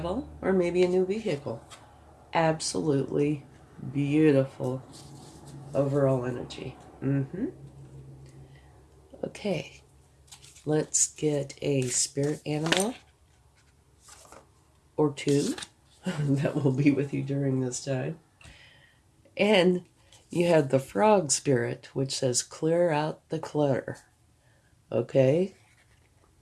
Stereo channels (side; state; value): both; identical; correlation 1.00